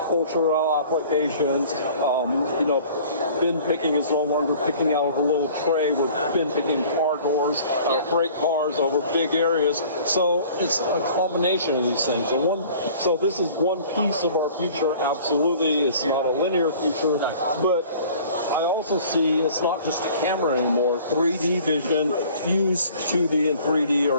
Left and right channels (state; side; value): inverted; both; correlation -0.49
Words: applications. Bin picking is no longer picking out of a little tray. We're bin picking car doors, freight cars over big areas. So it's a combination of these things. So this is one piece of our future. Absolutely, it's not a linear future, but I also see it's not just a camera anymore. 3D vision, used 2D and 3D are